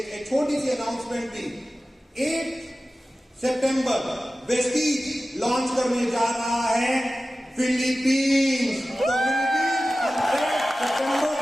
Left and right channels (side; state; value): both; normal; correlation 0.95